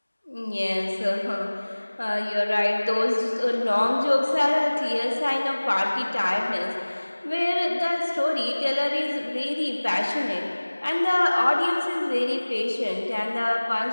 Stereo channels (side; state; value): both; inverted; correlation -1.00